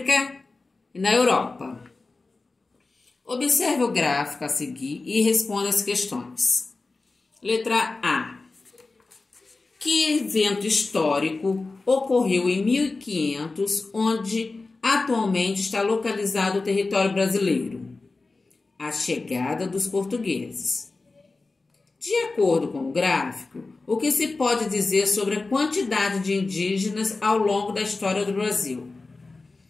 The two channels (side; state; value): right; quieter; 3.6 dB